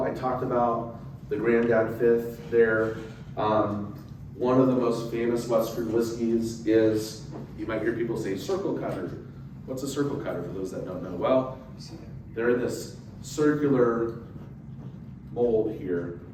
I talked about the Granddad Fifth there. One of the most famous Western whiskeys is, you might hear people say circle cutter. What's a circle cutter for those that don't know? Well, they're in this circular mold here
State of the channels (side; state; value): both; identical; correlation 1.00